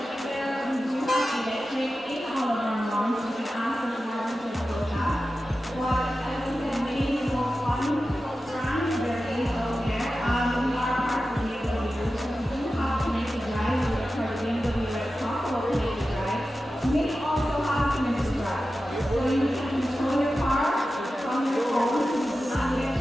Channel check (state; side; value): normal; both; correlation 0.93